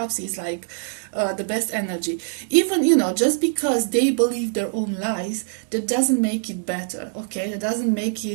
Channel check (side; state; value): left; silent; 63 dB below the other